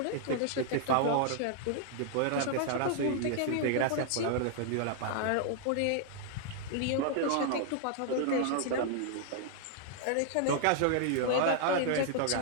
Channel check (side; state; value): both; different; correlation -0.01